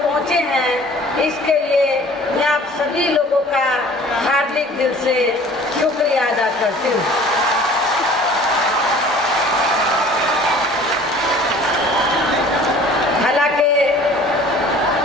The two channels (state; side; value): normal; both; correlation 0.49